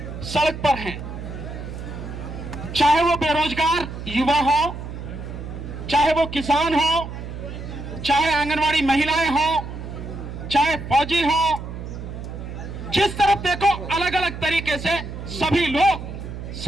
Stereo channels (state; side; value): noise; right; hum, 9 dB below the sound